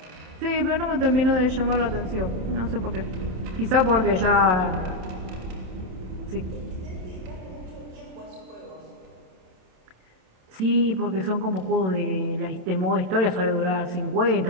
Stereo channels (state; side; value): late; left; 27 ms